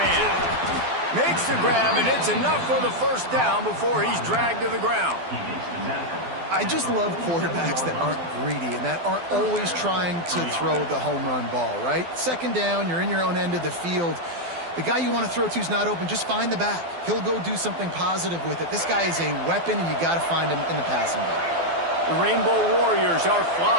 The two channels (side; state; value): left; late; 12 ms